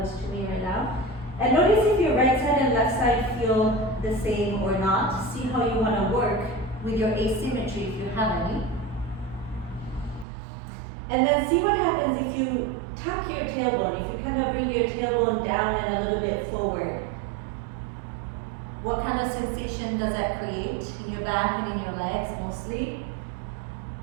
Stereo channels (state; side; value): drops out; left; at 10.2 s